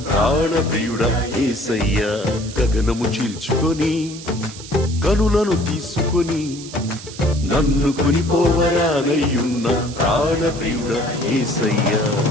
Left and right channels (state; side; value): noise; right; hiss, 15 dB below the sound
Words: ప్రాణప్రియుడ యేసయ్యా. గగనము చీల్చుకొని కనులను తీసుకొని నన్ను కొనిపోవరానయ్యున్న ప్రాణప్రియుడ యేసయ్యా.